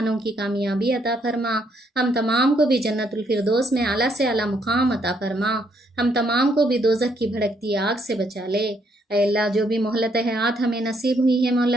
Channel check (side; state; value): both; normal; correlation 0.72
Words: کی کامیابی عطا فرما، ہم تمام کو بھی جنت الفردوس میں اعلیٰ سے اعلیٰ مقام عطا فرما، ہم تمام کو بھی دوزخ کی بھڑکتی آگ سے بچا لے۔ اے اللہ جو بھی مہلت حیات ہمیں نصیب ہوئی ہے